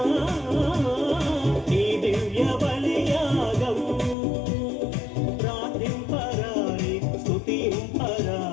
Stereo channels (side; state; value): right; drops out; at 4.2 s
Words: ఈ దివ్య బలియాగం ప్రార్థింపరారే